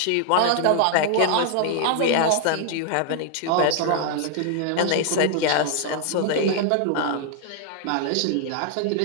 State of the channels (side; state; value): both; different; correlation 0.00